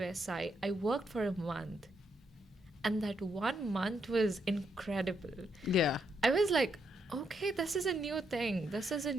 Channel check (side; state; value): both; normal; correlation 0.78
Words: SI, I worked for a month. And that 1 month was incredible. Yeah. I was like, okay, this is a new thing. This is a